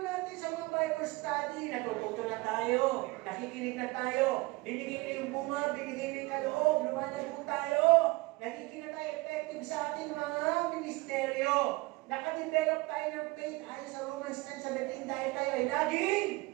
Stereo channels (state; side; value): quieter; left; 23.0 dB